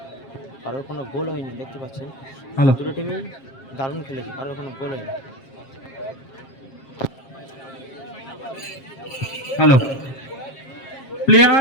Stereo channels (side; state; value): right; late; 7.4 ms